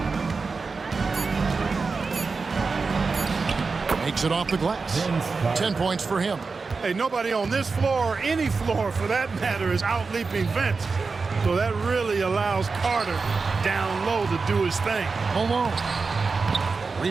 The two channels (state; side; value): quieter; left; 4.5 dB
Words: Makes it off the glass. 10 points for him. Hey, nobody on this floor or any floor for that matter is out-leaping Vince. So that really allows Carter down low to do his thing. Malone.